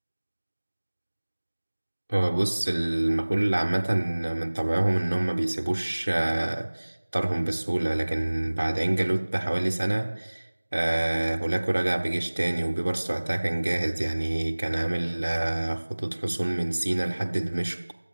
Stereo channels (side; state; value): both; inverted; correlation -1.00